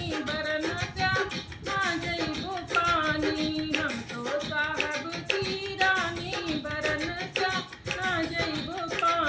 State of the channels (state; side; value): identical; both; correlation 1.00